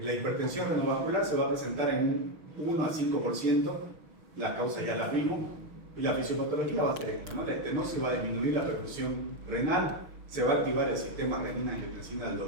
hipertensión renovascular se va a presentar en un 1 a 5%, las causas ya las vimos, y la fisiopatología va a ser esta, ¿no? La estenosis va a disminuir la perfusión renal, se va a activar el sistema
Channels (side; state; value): left; late; 6.3 ms